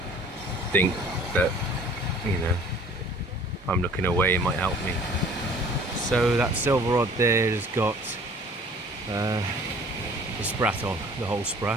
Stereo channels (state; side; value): normal; both; correlation 0.51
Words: think that, you know, if I'm looking away, it might help me. So that silver rod there has got the sprat on, the whole